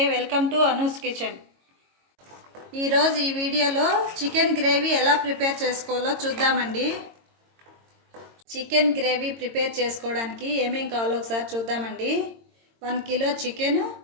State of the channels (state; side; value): late; left; 22 ms